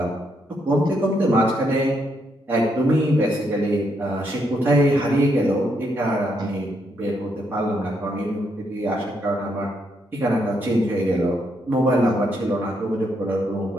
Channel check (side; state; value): both; normal; correlation 0.77